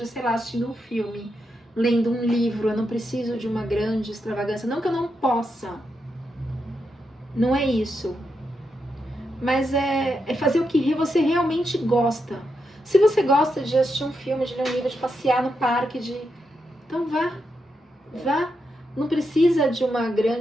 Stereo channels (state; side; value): normal; both; correlation 0.84